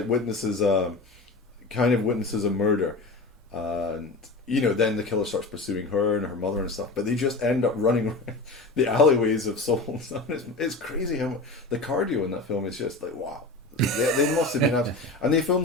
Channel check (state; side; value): quieter; right; 3.2 dB